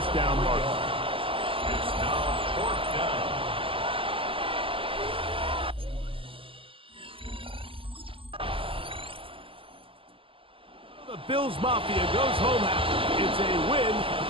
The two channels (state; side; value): late; left; 0.26 ms